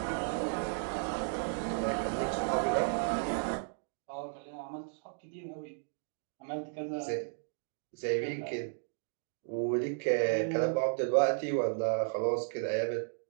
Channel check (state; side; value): silent; left; digital silence